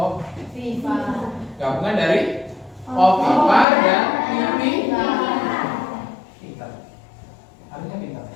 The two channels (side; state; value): right; drops out; at 3.7 s